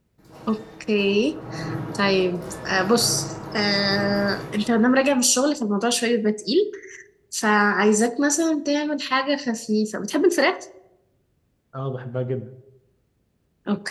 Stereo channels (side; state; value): both; identical; correlation 1.00